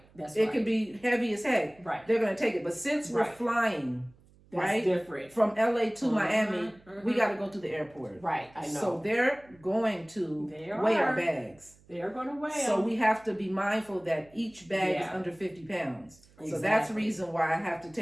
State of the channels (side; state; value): right; noise; hum, 28 dB below the sound